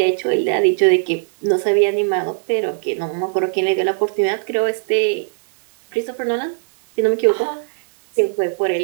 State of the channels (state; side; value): silent; left; digital silence